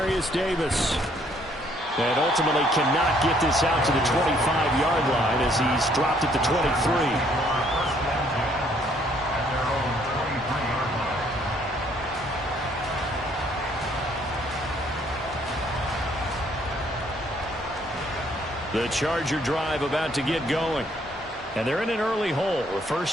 Davis. And ultimately cannot get this out to the 25-yard line as he's dropped at the 23. The Charger drive about to get going. And they're in an early hole. The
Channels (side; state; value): both; normal; correlation 0.65